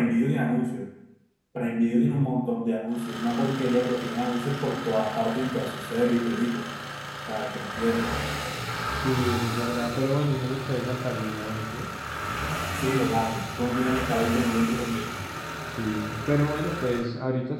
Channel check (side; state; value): both; identical; correlation 1.00